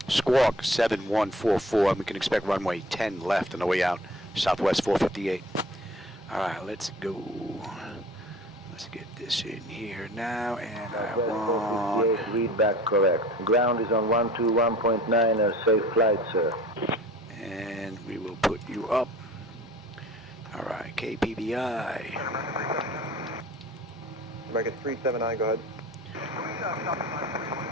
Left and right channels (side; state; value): both; normal; correlation 0.45